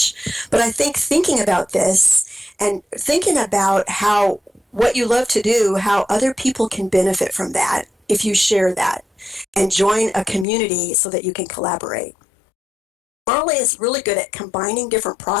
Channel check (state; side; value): drops out; right; at 10.5 s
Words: But I think thinking about this and thinking about what you love to do, how other people can benefit from that if you share that, and join a community so that you can collaborate. Marley is really good at combining different